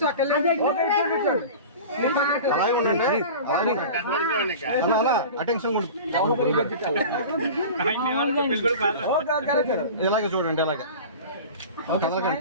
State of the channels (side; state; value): both; inverted; correlation -0.36